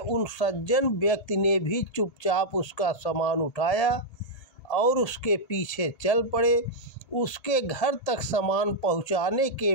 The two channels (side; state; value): right; late; 1.8 ms